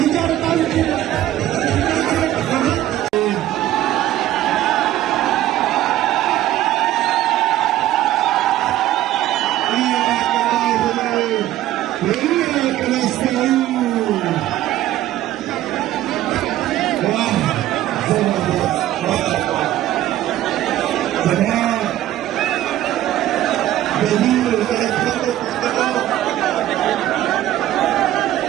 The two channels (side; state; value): left; quieter; 13.7 dB